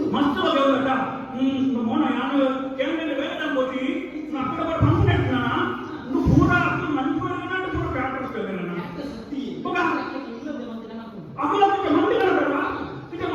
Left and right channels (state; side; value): identical; both; correlation 1.00